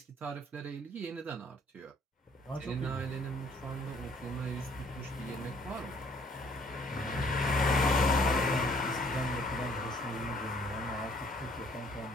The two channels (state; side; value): normal; both; correlation 0.61